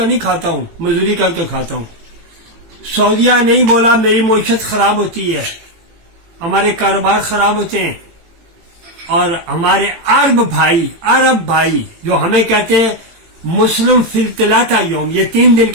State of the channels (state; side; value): late; left; 18 ms